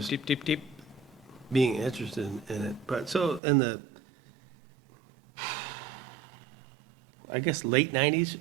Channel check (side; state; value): left; drops out; at 3.4 s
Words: just deep, deep, deep. being interested in it. But so in the, I guess late 90s,